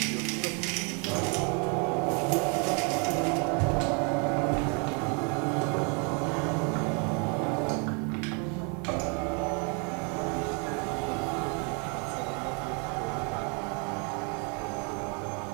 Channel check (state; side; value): quieter; left; 35.7 dB